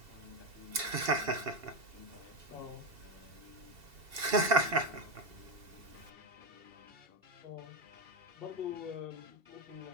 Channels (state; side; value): late; left; 2.7 ms